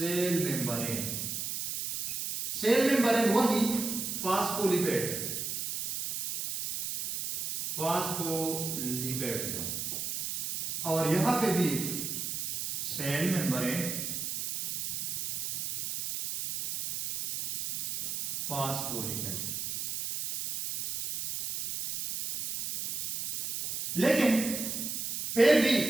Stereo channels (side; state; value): right; noise; hiss, 3 dB below the sound